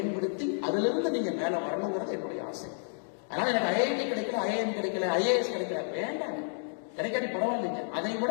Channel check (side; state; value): right; silent; digital silence